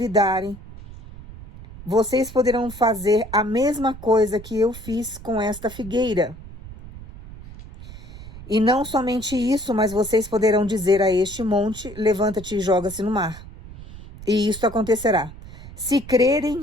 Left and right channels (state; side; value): noise; right; rumble, 15 dB below the sound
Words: vocês poderão fazer a mesma coisa que eu fiz com esta figueira. E não somente isso, mas vocês poderão dizer a este monte, levanta-te e joga-se no mar. E isto acontecerá. Se